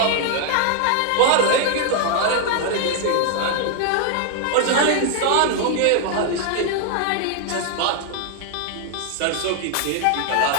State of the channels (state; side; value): different; both; correlation 0.00